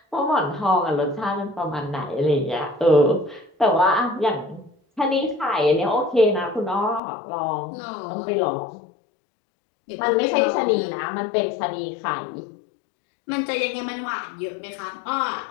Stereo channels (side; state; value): right; drops out; at 7.0 s